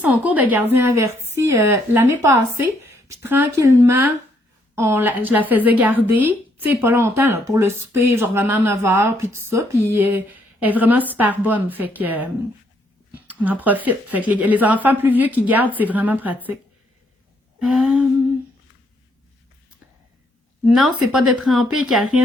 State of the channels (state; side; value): normal; both; correlation 0.71